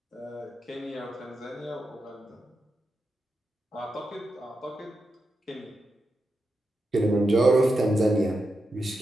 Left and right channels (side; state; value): both; normal; correlation 0.88